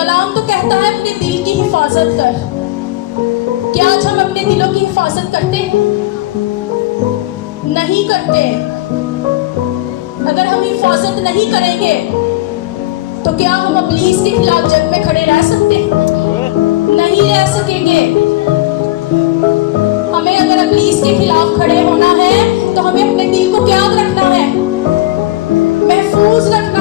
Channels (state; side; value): quieter; right; 17.6 dB